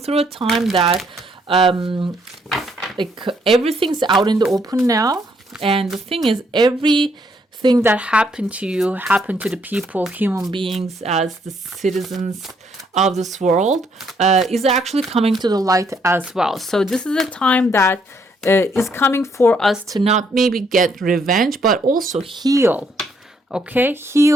a time that like everything's out in the open now, and the thing is, everything that happened to you happened to the people, human beings, as the citizens of this world, is actually coming to the light as well. So this is a time that is coming for us to not maybe get revenge, but also heal. Okay,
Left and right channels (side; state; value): both; normal; correlation 0.71